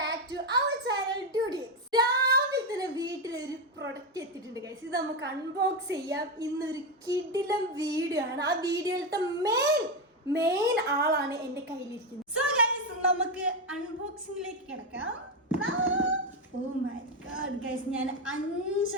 വീട്ടിലൊരു പ്രൊഡക്റ്റ് എത്തിയിട്ടുണ്ട് ഗൈസ്. ഇത് നമുക്ക് അൺബോക്സ് ചെയ്യാം. ഇന്നൊരു കിടിലം വീഡിയോ ആണ്. ആ വീഡിയോയിലത്തെ മെയിൻ ആളാണ് എന്റെ കയ്യിലിരിക്കുന്നത്. സോ ഗൈസ് നമുക്ക് അൺബോക്സിംഗിലേക്ക് കിടക്കാം. ഓ മൈ ഗോഡ് ഗൈസ്, ഞാൻ 5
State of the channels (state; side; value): normal; both; correlation 0.09